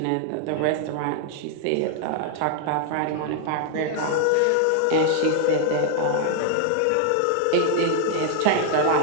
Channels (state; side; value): different; both; correlation 0.00